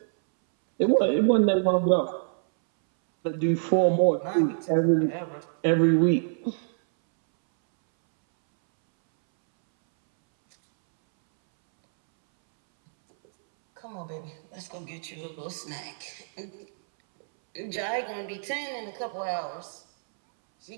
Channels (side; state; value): left; silent; 61 dB below the other